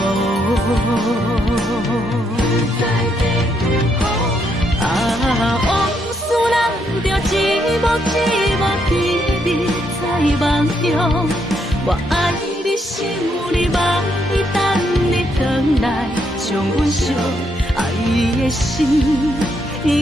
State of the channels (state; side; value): normal; both; correlation 0.76